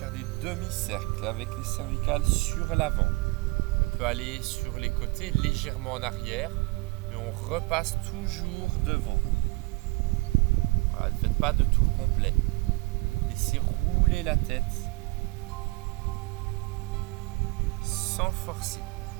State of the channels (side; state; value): left; quieter; 24.6 dB